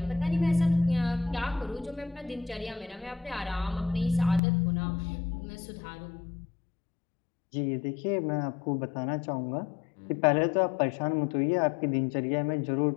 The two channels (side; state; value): right; drops out; at 4.4 s